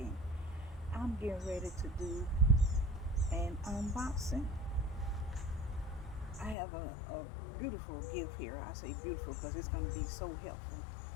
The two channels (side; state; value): right; drops out; at 6.6 s